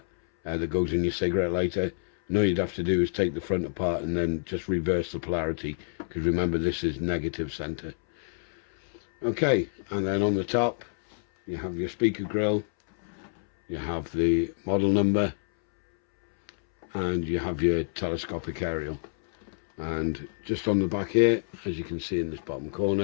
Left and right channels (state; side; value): silent; right; 60 dB below the other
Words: that goes in your cigarette lighter. And all you'd have to do is take the front apart and then just reverse the polarity, because remember, this is negative center. Okay, and then on the top you have your speaker grill, you have the model number, and you have your telescopic aerial. And just on the back here, as you can see in this bottom